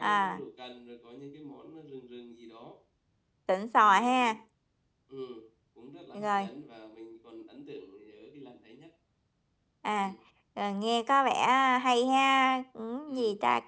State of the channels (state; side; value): identical; both; correlation 1.00